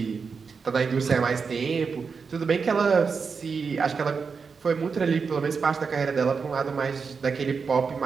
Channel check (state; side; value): quieter; left; 5.4 dB